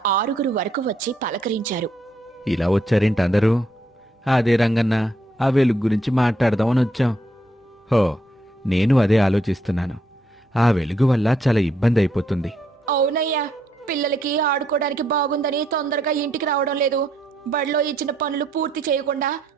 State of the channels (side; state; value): both; normal; correlation 0.73